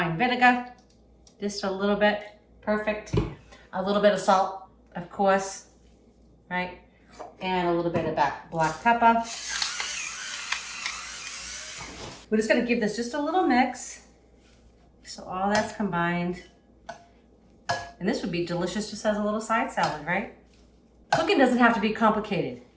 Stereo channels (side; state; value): both; identical; correlation 1.00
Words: vinegar, just a little bit, perfect. A little bit of salt, of course, right? And a little bit of black pepper. We're just gonna give this just a little mix. So all that's combined. And this would be delicious just as a little side salad, right? Cooking doesn't have to be complicated.